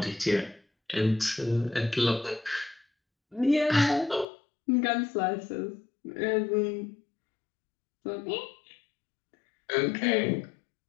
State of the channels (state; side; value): drops out; right; at 4.2 s